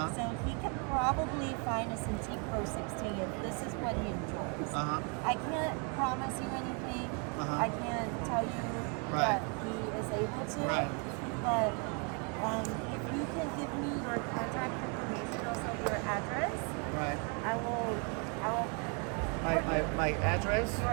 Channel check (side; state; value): left; quieter; 36.4 dB